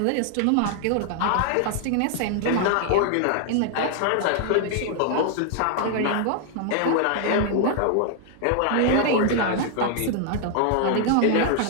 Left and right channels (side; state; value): both; different; correlation 0.00